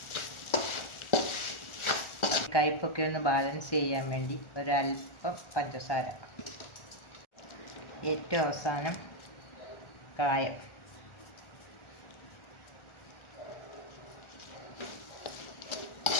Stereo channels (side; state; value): right; late; 1.4 ms